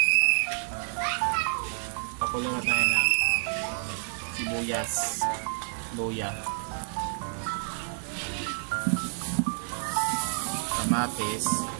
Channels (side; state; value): left; silent; 59 dB below the other